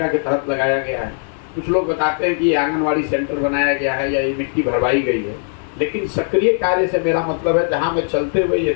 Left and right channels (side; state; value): right; silent; 63 dB below the other